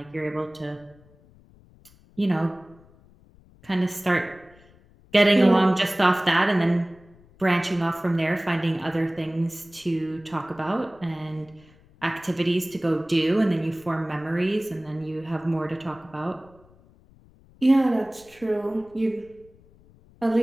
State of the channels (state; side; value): noise; left; rumble, 27 dB below the sound